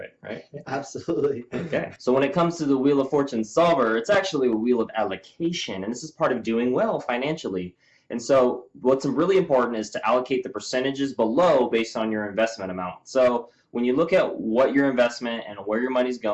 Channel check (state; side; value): identical; both; correlation 1.00